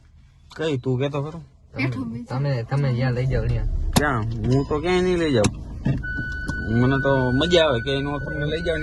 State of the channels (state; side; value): identical; both; correlation 1.00